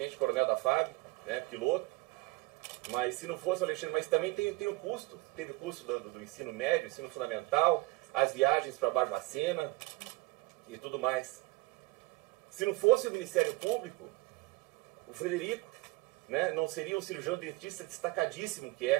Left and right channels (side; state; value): left; quieter; 22.6 dB